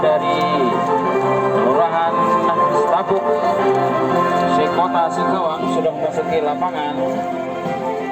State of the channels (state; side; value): identical; both; correlation 1.00